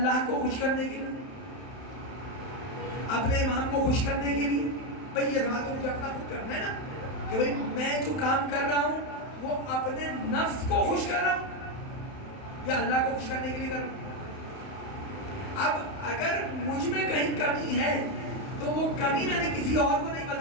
کو خوش کرنے کے لیے, اپنے امام کو خوش کرنے کے لیے؟ بھئی یہ بات تو مجھے اپنا خود کرنا ہے نا, کہ بھئی میں جو کام کر رہا ہوں وہ اپنے نفس کو خوش کر رہا ہوں یا اللہ کو خوش کرنے کے لیے کر رہا ہوں. اب اگر مجھ میں کہیں کمی ہے تو وہ کمی میں نے کسی اور کو نہیں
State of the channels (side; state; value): right; late; 31 ms